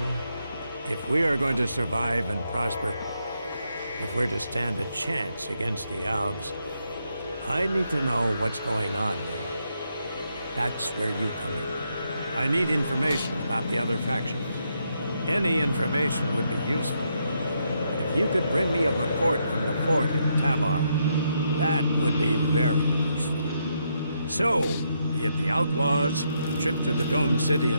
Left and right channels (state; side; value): inverted; both; correlation -0.79